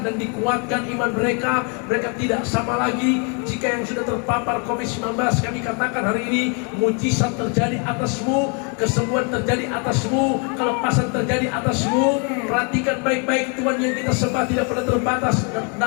dan dikuatkan iman mereka. Mereka tidak sama lagi. Jika yang sudah terpapar COVID-19, kami katakan hari ini, mujizat terjadi atasmu, kesembuhan terjadi atasmu, kelepasan terjadi atasmu. Perhatikan baik-baik, Tuhan yang kita sembah tidak pernah terbatas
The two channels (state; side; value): quieter; right; 36.8 dB